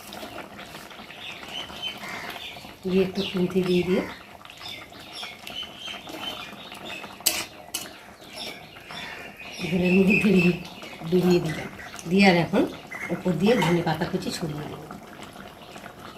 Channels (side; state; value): both; identical; correlation 1.00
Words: দিয়ে একটু খুন্তি দিয়ে ঝোলের মধ্যে ডুবিয়ে দিলাম, দিয়ে আর এখন উপর দিয়ে ধনে পাতা কুচি ছড়িয়ে দেবো,